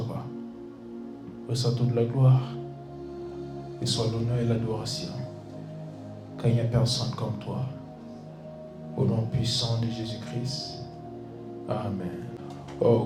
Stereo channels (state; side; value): identical; both; correlation 1.00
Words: Reçois toute la gloire. Et soit l'honneur et l'adoration. Car il n'y a personne comme toi. Au nom puissant de Jésus-Christ. Amen. Oh,